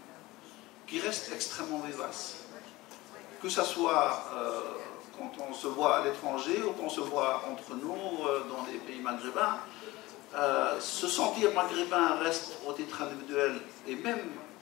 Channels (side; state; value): right; quieter; 19.7 dB